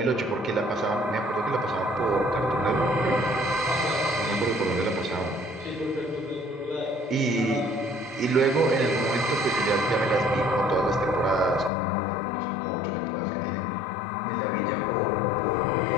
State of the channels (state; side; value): drops out; right; at 11.7 s